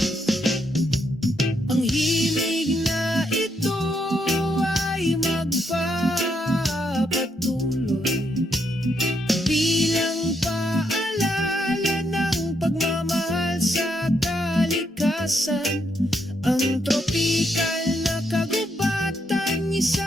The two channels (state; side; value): normal; both; correlation 0.77